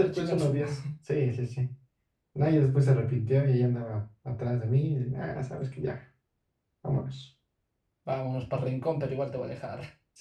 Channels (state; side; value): identical; both; correlation 1.00